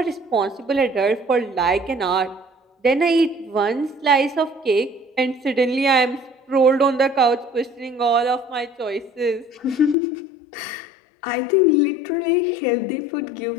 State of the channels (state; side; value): drops out; right; at 10.0 s